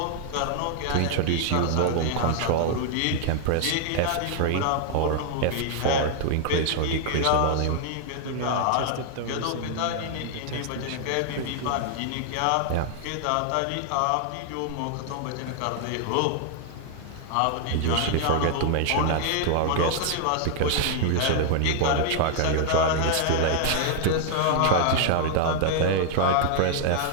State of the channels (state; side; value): different; both; correlation 0.00